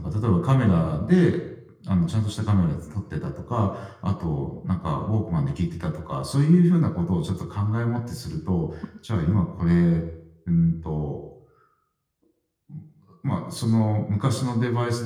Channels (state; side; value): identical; both; correlation 1.00